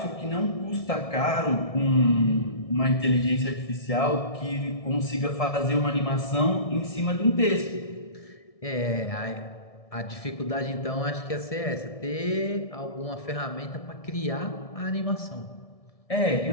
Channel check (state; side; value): late; right; 1.6 ms